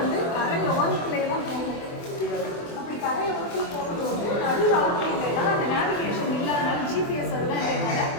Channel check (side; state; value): right; late; 24 ms